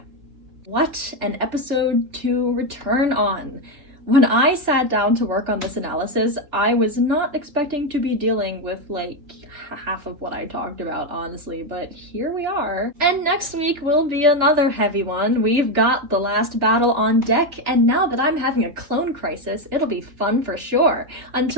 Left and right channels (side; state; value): left; late; 3.4 ms